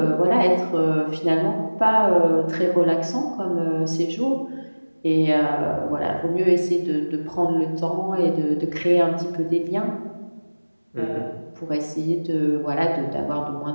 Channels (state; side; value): inverted; both; correlation -1.00